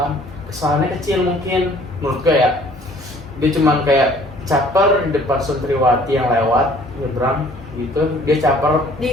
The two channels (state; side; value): noise; right; hum, 26 dB below the sound